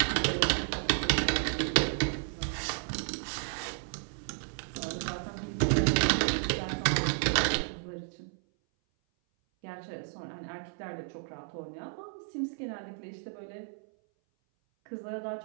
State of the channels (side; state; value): left; silent; 56 dB below the other